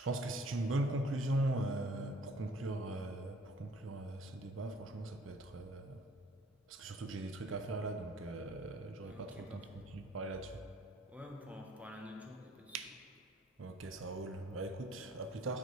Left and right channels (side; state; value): both; normal; correlation 0.57